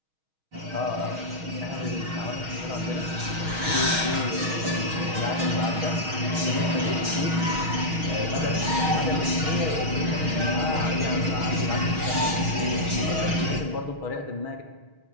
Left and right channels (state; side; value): late; left; 6.3 ms